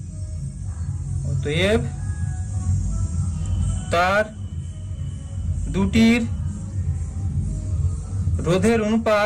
অতএব তার দুটির রোধের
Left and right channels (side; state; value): both; identical; correlation 1.00